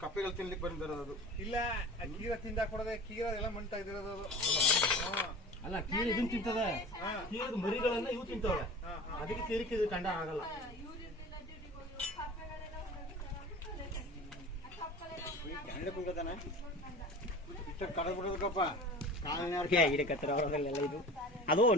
ಕಪ್ಪೆಗಳು ತಿನ್ಲಿಕ್ಕೆ ಬಂದಿರೋದು ಇಲ್ಲ ಕೀರ ತಿಂದ ಕೊಡದೆ ಕೀರ ಎಲ್ಲ ಮಂಟ ಇದಿರೋದು ಅಲ್ಲ ಕೀರ ಇದನ್ನ ತಿಂತದೆ ಕೀರದ ಮರಿಗಳನ್ನ ಇವು ತಿಂತವೆ ಅದಕ್ಕೆ ಕೀರಿಕೆ ಇದು ಕಂಡ ಆಗಲ್ಲ ಕಡಬಿಡೋದಕ್ಕಪ್ಪ ಗಿಡಕತ್ರ ಅವರಲ್ಲೆಲ್ಲ ಇದು ಅದು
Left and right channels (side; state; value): both; normal; correlation 0.38